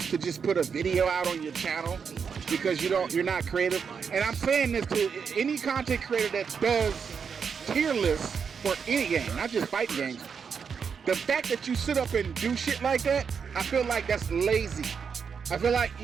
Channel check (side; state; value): left; quieter; 6.3 dB